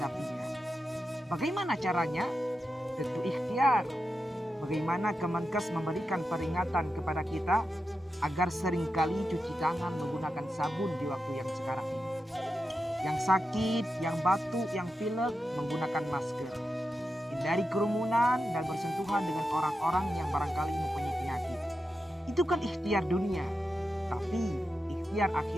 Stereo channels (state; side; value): normal; both; correlation 0.89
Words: Bagaimana caranya? Tentu ikhtiar. Bagaimana Kemenkes memberikan peringatan kepada kita agar seringkali cuci tangan menggunakan sabun di waktu yang sekarang ini. Yang sakit, yang batuk, yang pilek menggunakan masker. Hindari kerumunan dan bersentuhan dengan orang-orang yang barangkali mempunyai penyakit. Itu kan ikhtiar dunia. Tapi ikhtiar